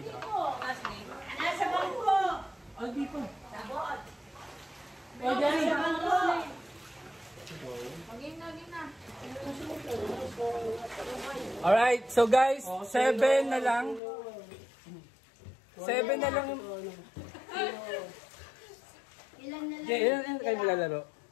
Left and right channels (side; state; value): right; drops out; at 14.0 s